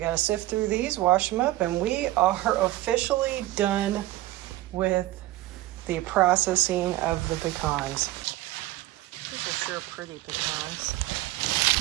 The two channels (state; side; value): quieter; left; 16.9 dB